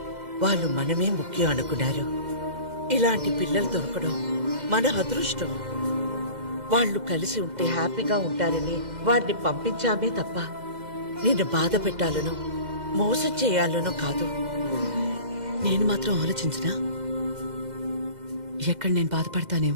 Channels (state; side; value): late; left; 2.0 ms